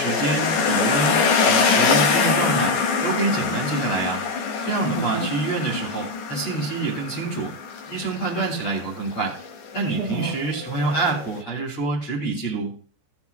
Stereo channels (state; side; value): late; right; 14 ms